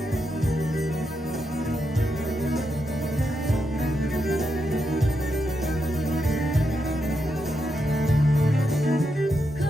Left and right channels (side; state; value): both; normal; correlation 0.84